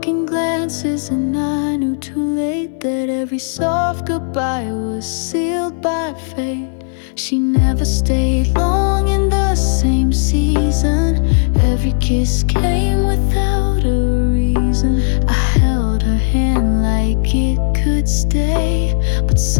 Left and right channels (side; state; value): right; silent; digital silence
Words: in glances and I knew too late that every soft goodbye was sealed by fate. She never stayed long in the same season. Every kiss came without a reason. I held her hand like it could stay, but